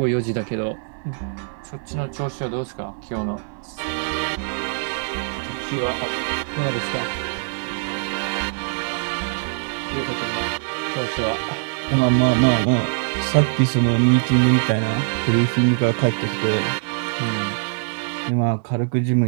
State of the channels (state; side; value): silent; left; digital silence